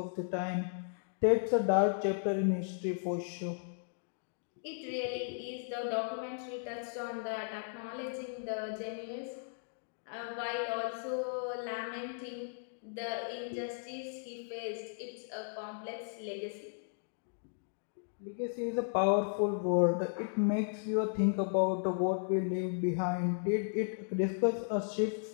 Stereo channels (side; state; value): right; silent; digital silence